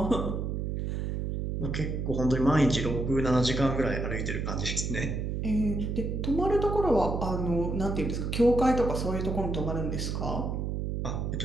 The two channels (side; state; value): right; noise; hum, 2 dB below the sound